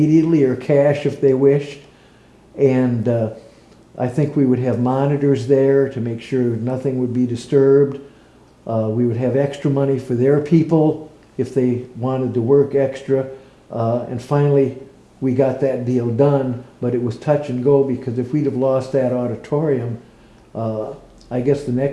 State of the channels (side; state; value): both; identical; correlation 1.00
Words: or cash if they wished. And I think we would have monitors there to make sure nothing would be disturbed. We would have extra money for their people if they wanted to work extra. And finally, we got that deal done, but it was touch and go because if we'd have lost that auditorium, I guess the